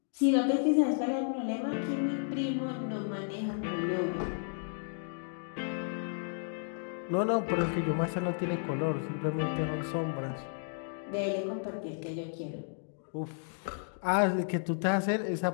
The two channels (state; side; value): silent; right; digital silence